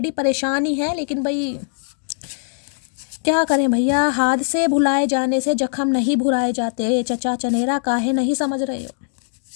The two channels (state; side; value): silent; right; 65 dB below the other